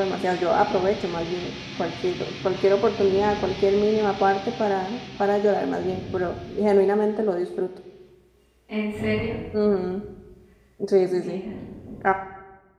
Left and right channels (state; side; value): identical; both; correlation 1.00